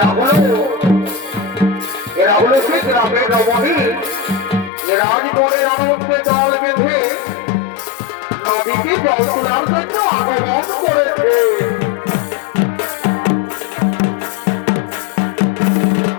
এরা হলো সে গ্রামের রমণী রাজগড়ের আনন্দে জল বেঁধে নদীতে জল তোলার জন্য আগমন করেছে।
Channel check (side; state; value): right; drops out; at 4.7 s